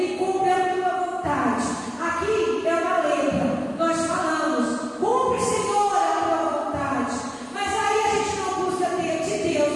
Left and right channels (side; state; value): both; identical; correlation 1.00